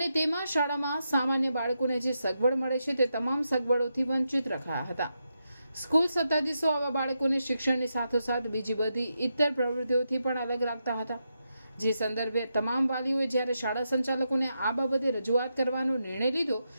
તેમાં શાળામાં સામાન્ય બાળકોને જે સગવડ મળે છે તે તમામ સગવડોથી વંચિત રખાયા હતા. સ્કૂલ સત્તાધીશો આવા બાળકોને શિક્ષણની સાથોસાથ બીજી બધી ઇતર પ્રવૃત્તિઓથી પણ અલગ રાખતા હતા, જે સંદર્ભે તમામ વાલીઓએ જ્યારે શાળા સંચાલકોને આ બાબતે રજૂઆત કરવાનો નિર્ણય લીધો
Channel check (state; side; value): inverted; both; correlation -0.85